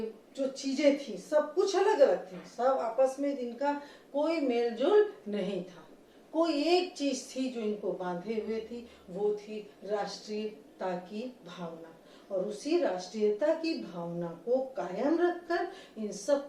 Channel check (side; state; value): both; identical; correlation 1.00